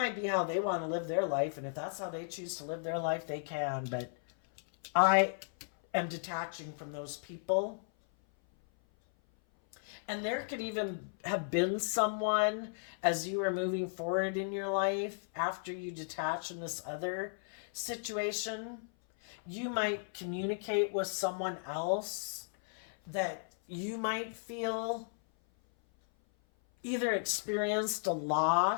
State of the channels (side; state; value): right; silent; 54 dB below the other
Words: be how they want to live their life, and if that's how they choose to live their life, they can, but I am detaching from those people. And there could even have been someone as you were moving forward in your life after you detach in this other situation. You might communicate with someone else that you might feel either experienced a